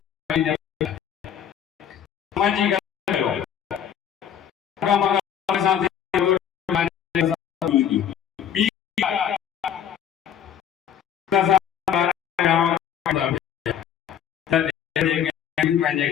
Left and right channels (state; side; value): quieter; right; 9.2 dB